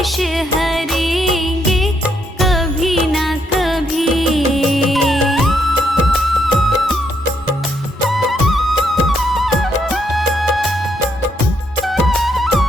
हरेंगे कभी ना कभी।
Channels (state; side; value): normal; both; correlation 0.75